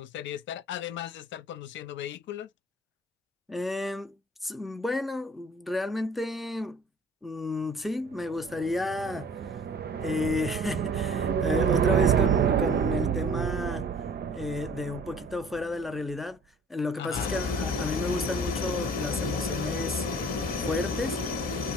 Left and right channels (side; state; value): both; normal; correlation 0.50